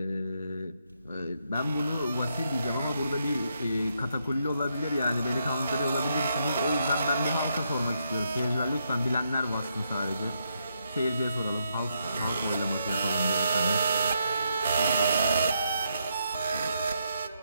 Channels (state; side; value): inverted; both; correlation -0.79